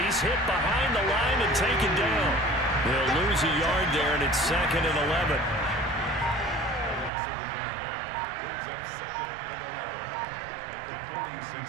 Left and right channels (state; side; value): drops out; left; at 7.1 s